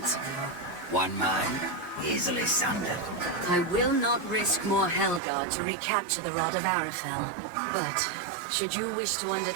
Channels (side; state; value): left; drops out; at 5.2 s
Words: ago. One mind, easily sundered. I will not risk more Hellguard to recapture the Rod of Arafel. But, should you wish to